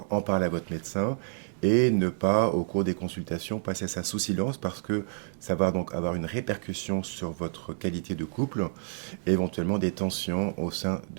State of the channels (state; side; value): silent; left; digital silence